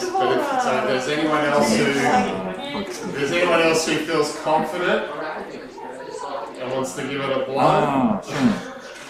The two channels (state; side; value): identical; both; correlation 1.00